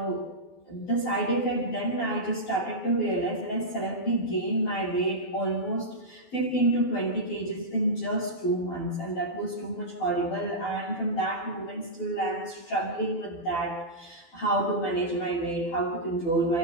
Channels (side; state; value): right; late; 12 ms